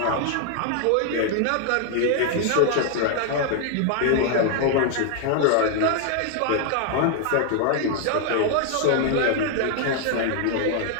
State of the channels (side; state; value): both; different; correlation 0.00